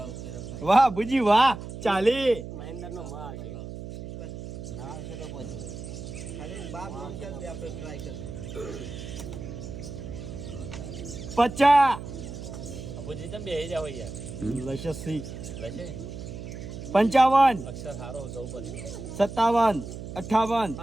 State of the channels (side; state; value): right; noise; hum, 10 dB below the sound